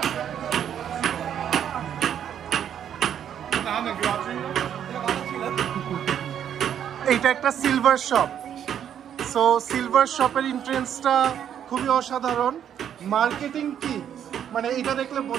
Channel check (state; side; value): quieter; left; 9.4 dB